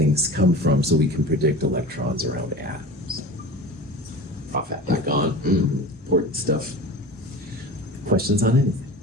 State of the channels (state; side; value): normal; both; correlation 0.34